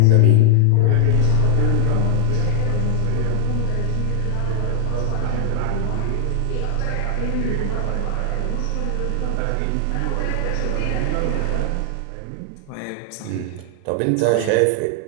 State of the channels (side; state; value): both; different; correlation 0.00